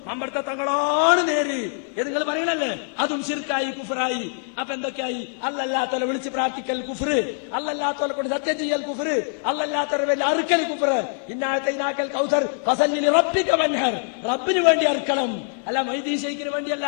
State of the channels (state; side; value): silent; right; 55 dB below the other